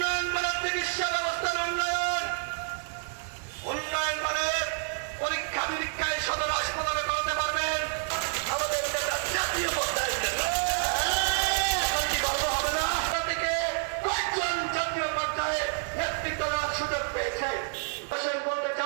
করে চিকিৎসা ব্যবস্থার উন্নয়ন, উন্নয়ন মানে পরীক্ষা নিরীক্ষায় সদর হাসপাতালে করতে পারবেন। জাতীয় পর্যায়ে কয়েকজন জাতীয় পর্যায়ে নেতৃত্ব দেওয়ার সুযোগ পেয়েছে। বলতে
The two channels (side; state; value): left; silent; 59 dB below the other